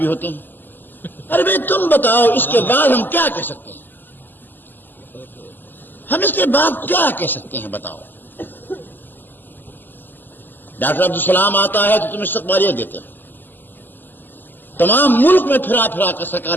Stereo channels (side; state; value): right; late; 0.090 ms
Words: ہوتے ہیں. ارے بھائی تم بتاؤ اس کے بعد ہم کیا کہہ سکتے ہیں؟ ہم اس کے بعد کیا کہہ سکتے ہیں بتاؤ؟ ڈاکٹر عبدالسلام آتا ہے تو تم استقبالیت دیتے ہو. تمام ملک میں پھرا پھرا کر